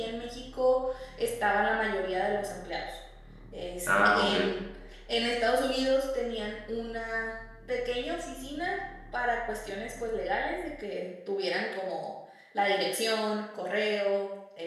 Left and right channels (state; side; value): identical; both; correlation 1.00